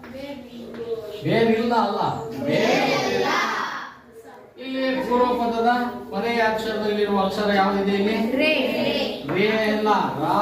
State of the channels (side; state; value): both; identical; correlation 1.00